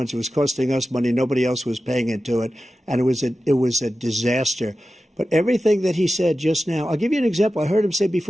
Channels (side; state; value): both; normal; correlation 0.93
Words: who was costing us money. Nobody else was paying into it. And it was a disaster. But everything that he said just now, I'll give you an example. I heard him say